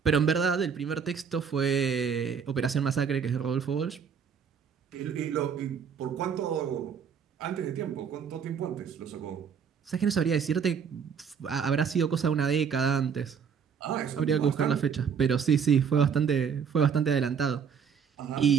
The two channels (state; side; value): quieter; left; 6.9 dB